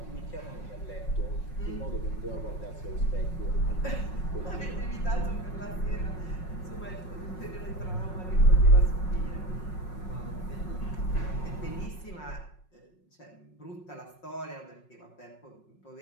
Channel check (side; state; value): right; late; 5.5 ms